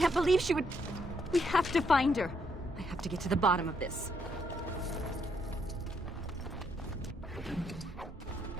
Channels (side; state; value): both; normal; correlation 0.74